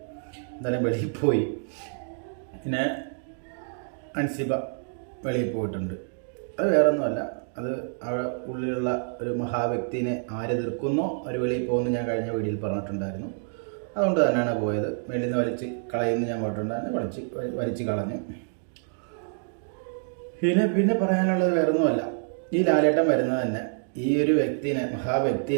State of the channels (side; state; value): left; silent; 60 dB below the other